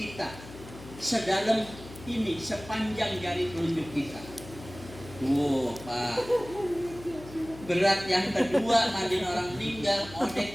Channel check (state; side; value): noise; left; hum, 16 dB below the sound